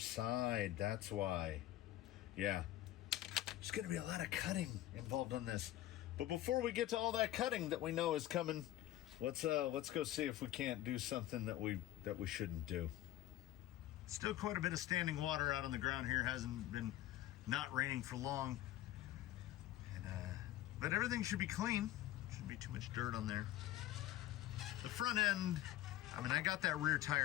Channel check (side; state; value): right; quieter; 14.4 dB